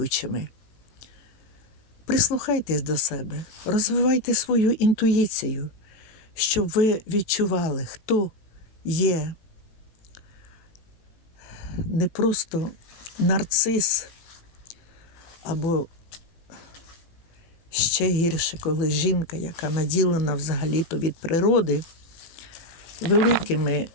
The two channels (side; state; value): right; late; 18 ms